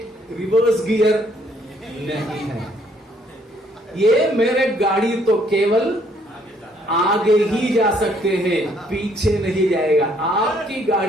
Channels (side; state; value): both; normal; correlation 0.66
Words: रिवर्स गियर नहीं है। ये मेरे गाड़ी तो केवल आगे ही जा सकते हैं, पीछे नहीं जाएगा। आपकी